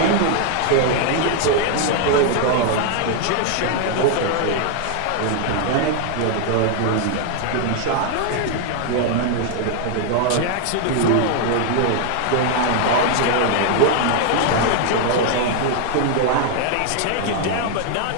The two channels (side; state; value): both; different; correlation 0.00